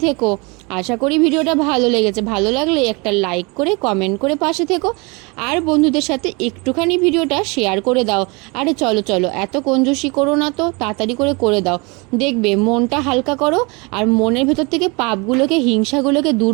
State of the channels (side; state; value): left; quieter; 28.6 dB